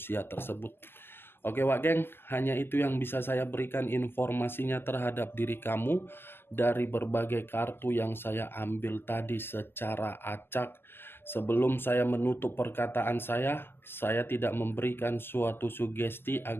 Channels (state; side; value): late; right; 0.11 ms